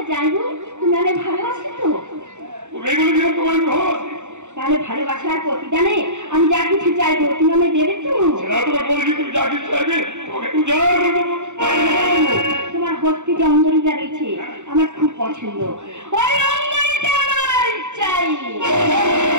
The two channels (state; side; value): late; left; 0.84 ms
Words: যাই হোক, তুমি ভালো আছো তো? তোমার ভালো আছে তাহলে ভালোবাসার প্রতিদানে আমি যা কিছু চাইবো তুমি আমায় দেবে তো? তুমি যা কিছু চাইবে তোমাকে উজাড় করে দেবো। তোমার হস্তে যে অঙ্গরিটা রয়েছে আমার খুব পছন্দ, ওই অঙ্গরিটা আমার চাই।